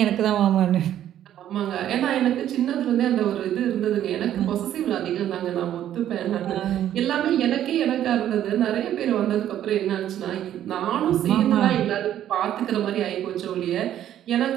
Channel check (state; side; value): quieter; left; 11.3 dB